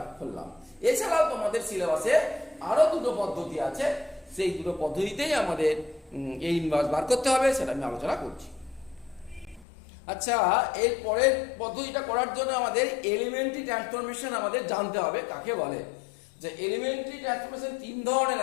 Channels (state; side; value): drops out; right; at 9.7 s